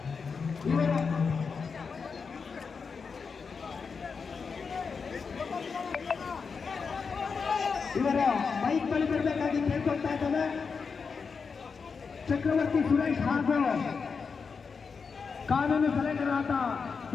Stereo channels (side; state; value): right; quieter; 5.4 dB